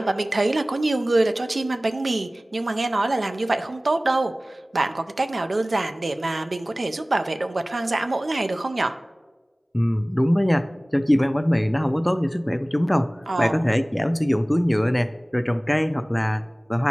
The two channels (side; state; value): both; normal; correlation 0.98